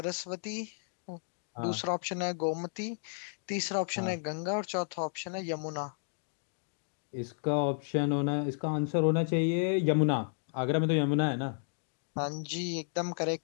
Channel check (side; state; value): right; silent; digital silence